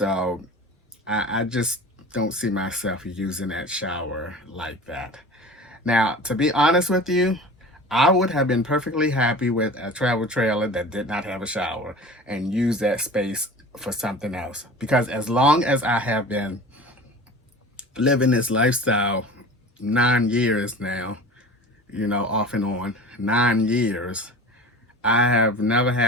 I just don't see myself using that shower like that. Now, to be honest with you, I would have been perfectly happy with a travel trailer that did not have a shower and use that space for something else. Because as long as I have been living this lifestyle, 9 years now, off and on, 9 years, I have never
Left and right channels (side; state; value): both; normal; correlation 0.38